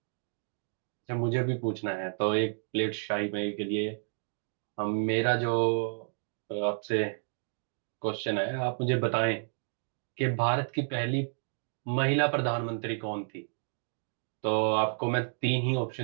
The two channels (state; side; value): silent; left; 57 dB below the other